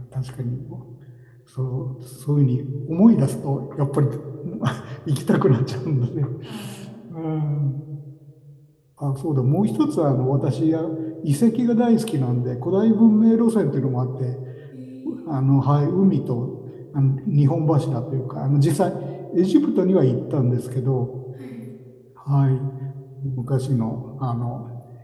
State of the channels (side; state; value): both; identical; correlation 1.00